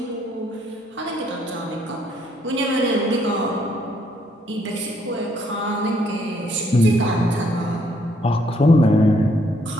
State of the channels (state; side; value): normal; both; correlation 0.69